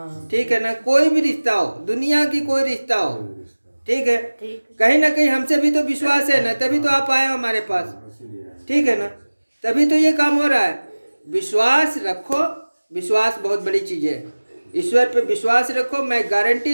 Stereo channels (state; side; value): inverted; both; correlation -1.00